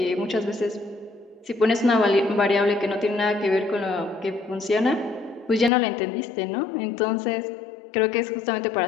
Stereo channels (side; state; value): right; drops out; at 5.7 s